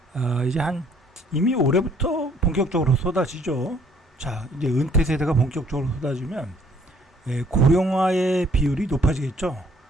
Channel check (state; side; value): normal; both; correlation 0.62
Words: 이제 이미 올해부터 본격적으로 쏟아지죠. 자, 이제 은퇴 세대가 본격적으로 쏟아지면 고령화의 비율이 높아지겠죠.